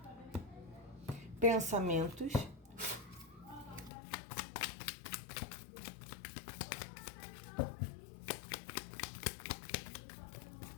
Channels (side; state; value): right; drops out; at 3.9 s